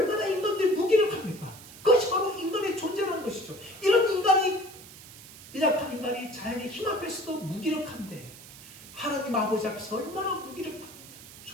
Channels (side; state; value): right; noise; hiss, 17 dB below the sound